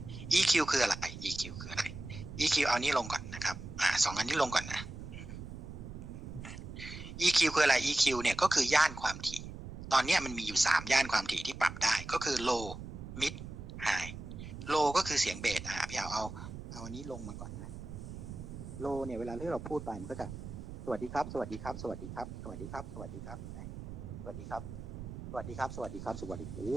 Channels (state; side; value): noise; right; rumble, 10 dB below the sound